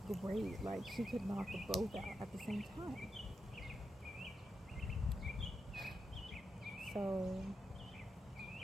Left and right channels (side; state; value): both; normal; correlation 0.86